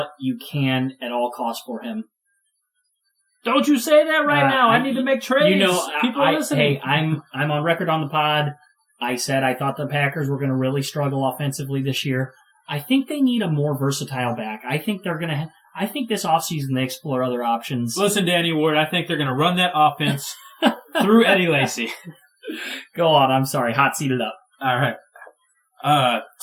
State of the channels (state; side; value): identical; both; correlation 1.00